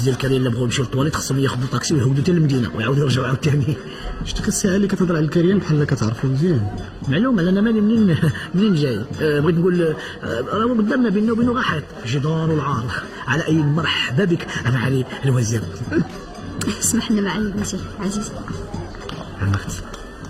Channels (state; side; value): identical; both; correlation 1.00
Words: الكريم اللي بغاو يمشيو للطواليت خصهم ياخذوا طاكسي ويهودوا حتى للمدينه ويعاودوا يرجعوا عاوتاني؟ شتي الساعه اللي كتهضر على الكريم بحال كتعرفو مزيان. معلوم انا مالي منين جاي. بغيت نقول راه قدامنا بيننا وبينه غاحط جدار والعار. على اي مرحبا بك معالي الوزير. اسمح لنا معالي الوزير عزيز. عمرت